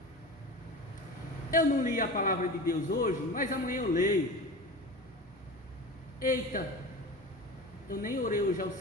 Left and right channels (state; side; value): normal; both; correlation 0.31